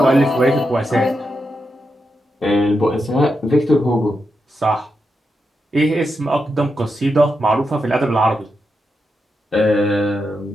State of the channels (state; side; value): normal; both; correlation 0.86